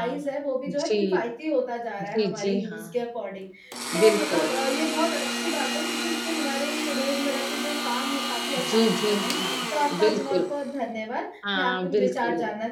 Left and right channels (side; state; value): both; identical; correlation 1.00